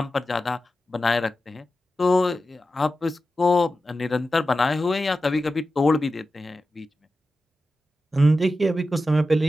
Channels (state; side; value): normal; both; correlation 0.92